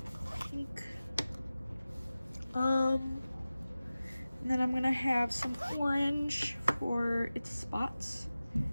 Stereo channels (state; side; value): inverted; both; correlation -0.96